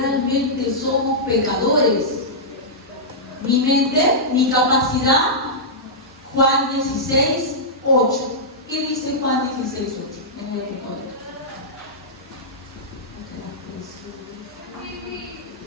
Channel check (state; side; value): normal; both; correlation -0.12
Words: somos pecadores? ¿Mi mente? ¿Mi capacidad? Juan 16:8. ¿Qué dice Juan 16:8? No voy a poner.